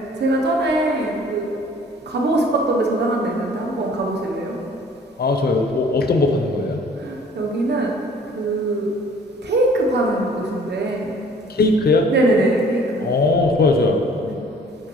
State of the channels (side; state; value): both; normal; correlation 0.53